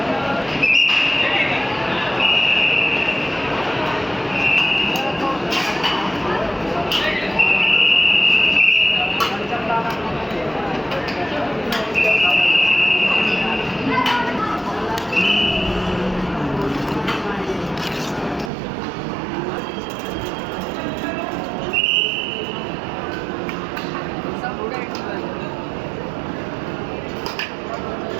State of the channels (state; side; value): drops out; left; at 18.5 s